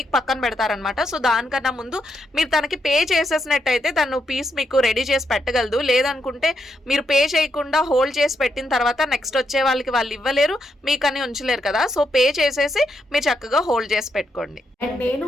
పక్కన పెడతారనమాట. సో దానికన్నా ముందు మీరు తనకి పే చేసేసినట్టయితే తను పీస్ మీకు రెడీ చేసి పెట్టగలదు. లేదనుకుంటే మీరు పే చేయకుండా హోల్డ్ చేసి పెట్టిన తర్వాత నెక్స్ట్ వచ్చే వాళ్ళకి వాళ్ళు ఇవ్వలేరు, మీకని ఉంచలేరు కదా. సో పే చేసేసి మీరు చక్కగా హోల్డ్ చేసి పెట్టుకోండి. అండ్ నేను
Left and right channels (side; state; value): both; normal; correlation 0.80